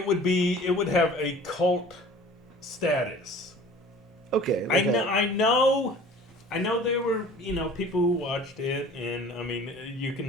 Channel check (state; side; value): normal; both; correlation 0.46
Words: would have a cult status. Okay. I know there were people who watched it, and I mean you